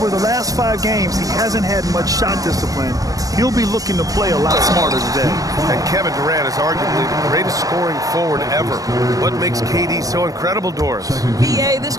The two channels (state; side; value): late; left; 0.17 ms